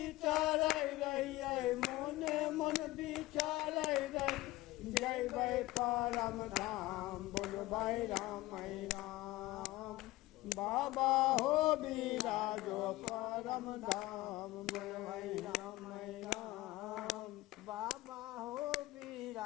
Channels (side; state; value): right; quieter; 18.2 dB